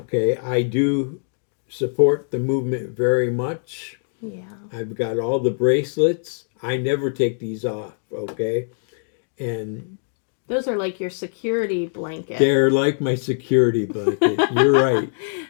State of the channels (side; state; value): right; silent; digital silence